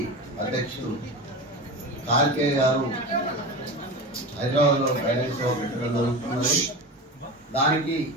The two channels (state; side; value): normal; both; correlation 0.27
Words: హైదరాబాద్ లో ఫైనాన్స్ పెట్టడం జరుగుతున్నది. దానికి